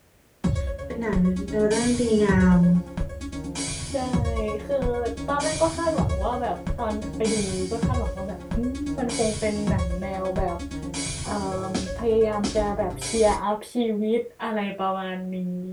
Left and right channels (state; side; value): identical; both; correlation 1.00